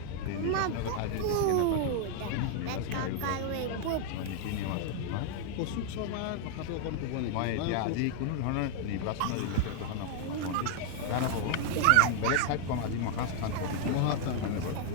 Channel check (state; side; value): different; both; correlation 0.00